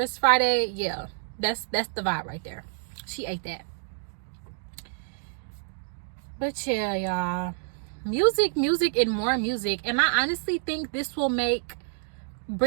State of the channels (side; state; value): left; silent; digital silence